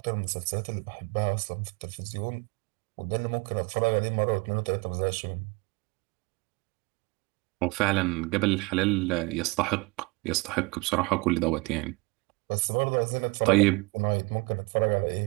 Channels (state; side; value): quieter; left; 26.8 dB